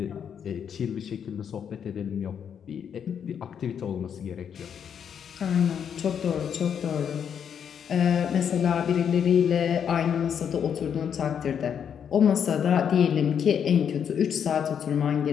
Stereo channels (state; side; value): quieter; right; 8.0 dB